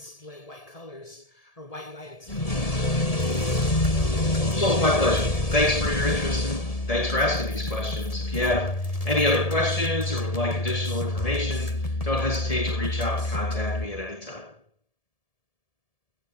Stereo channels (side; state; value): right; late; 1.7 ms